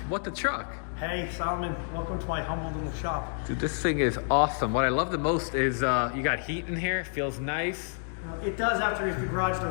what the truck? Hey Solomon, welcome to my humble little shop. Dude, this thing is awesome. What I love the most is you got heat in here. It feels nice. It does after the garage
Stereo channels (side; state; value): right; silent; digital silence